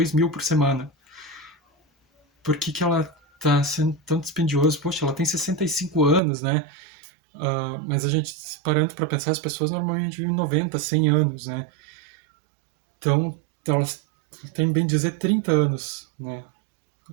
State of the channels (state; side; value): drops out; left; at 6.2 s